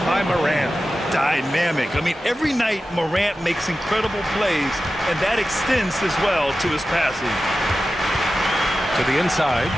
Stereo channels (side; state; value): both; normal; correlation 0.93